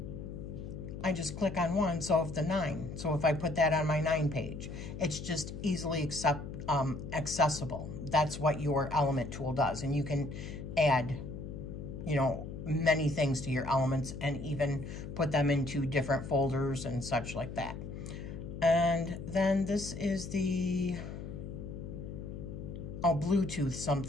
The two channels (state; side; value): noise; left; hum, 8 dB below the sound